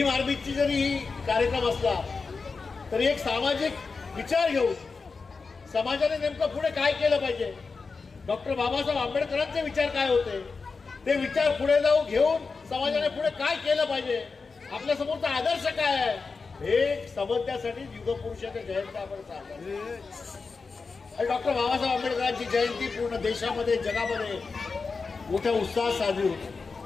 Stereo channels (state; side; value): quieter; right; 4.5 dB